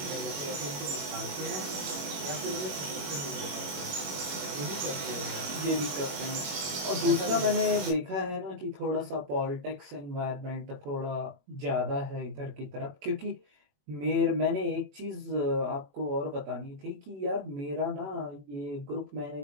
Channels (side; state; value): left; late; 21 ms